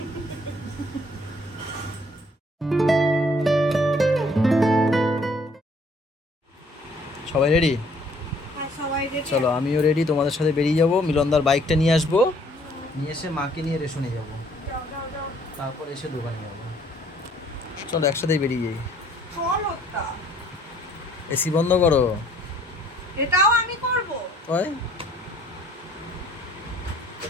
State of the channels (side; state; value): both; normal; correlation 0.61